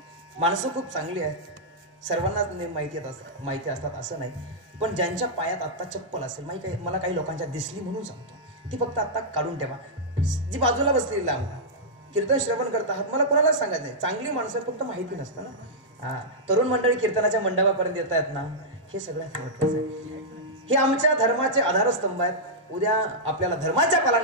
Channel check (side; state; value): both; normal; correlation -0.10